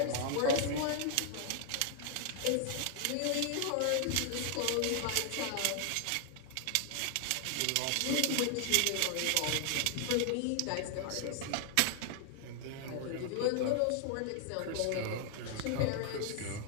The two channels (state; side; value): different; both; correlation 0.00